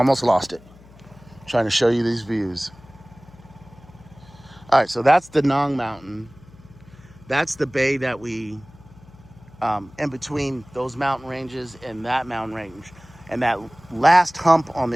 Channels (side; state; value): left; noise; hum, 23 dB below the sound